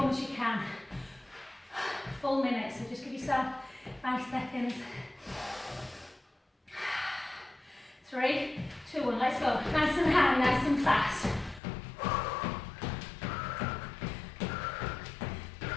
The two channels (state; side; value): drops out; right; at 11.6 s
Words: as you can. Full minute, so just give yourself 5 seconds. 3, 2, 1, let's go. Nice and high, nice and fast.